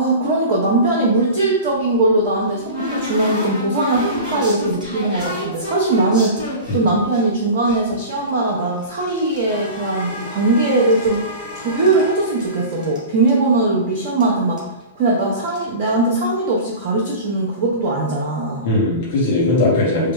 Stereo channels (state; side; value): inverted; both; correlation -0.32